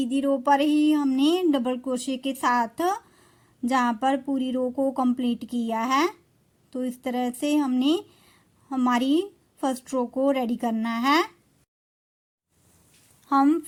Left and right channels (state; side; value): identical; both; correlation 1.00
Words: रो पर ही हमने डबल क्रोशिया के साथ जहाँ पर पूरी रो को कंप्लीट किया है। तो इस तरह से हमने हमारी फर्स्ट रो को रेडी करना है। हम